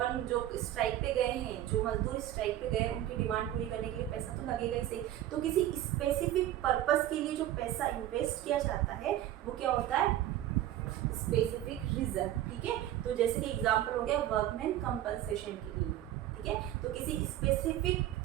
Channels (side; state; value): left; quieter; 12.9 dB